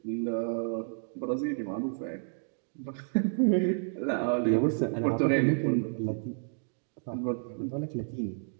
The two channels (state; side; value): silent; left; digital silence